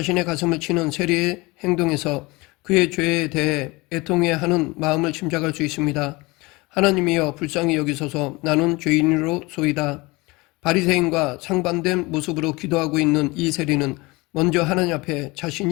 가슴을 치는 세리의 행동에서 그의 죄에 대해 애통해 하는 마음을 짐작할 수 있습니다. 하나님이여 불쌍히 여기소서 나는 죄인으로소이다. 바리새인과 상반된 모습으로 기도하고 있는 이 세리는 먼저 하나님 앞에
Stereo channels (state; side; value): quieter; right; 23.7 dB